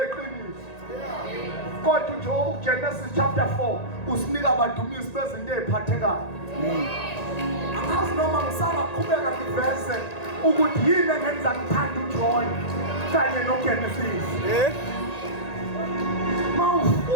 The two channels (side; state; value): right; late; 1.9 ms